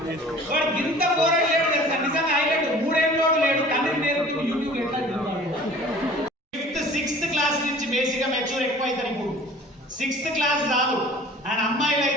వాడు ఇంత పోరాడు లేడు తెలుసా, నిజంగా హైలైట్. 3 ఏళ్ళు లేడు, తండ్రి నేర్పుతుంది యూట్యూబ్ ఎట్లా. 5th 6th క్లాస్ నుంచి బేసిక్ గా మెచ్యూర్ ఎక్కువ అవుతారు. ఇప్పుడు 6th క్లాస్ చాలు. అండ్ అమ్మాయిలు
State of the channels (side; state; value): both; normal; correlation 0.47